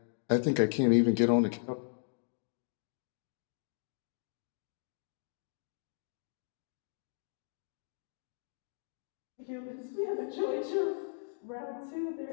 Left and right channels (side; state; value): right; silent; digital silence